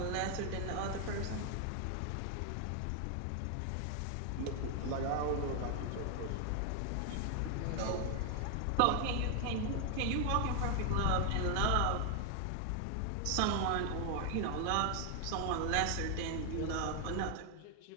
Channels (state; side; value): different; both; correlation 0.00